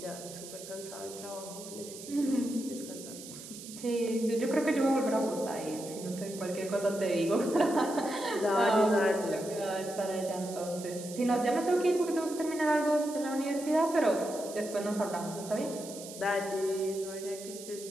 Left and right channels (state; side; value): noise; right; hiss, 13 dB below the sound